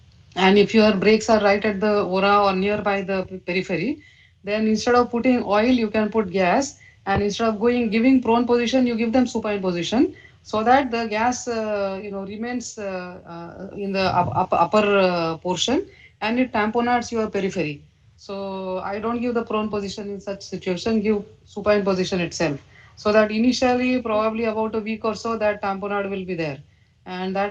and if your brakes are right at the aura or nearby the periphery, then instead of putting oil, you can put gas, and instead of giving prone position, you give them supine position, so that the gas remains in the upper portion, and it tamponades your periphery. So I don't give the prone position in such situation, give supine position itself, so that initially probably about a week or so that tamponade will be there. and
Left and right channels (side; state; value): both; identical; correlation 1.00